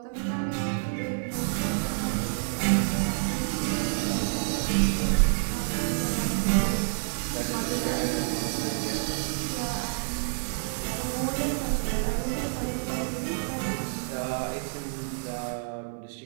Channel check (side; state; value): left; silent; 57 dB below the other